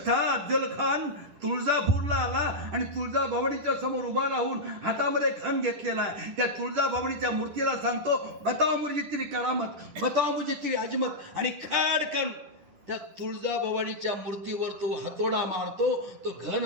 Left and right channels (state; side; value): late; left; 10 ms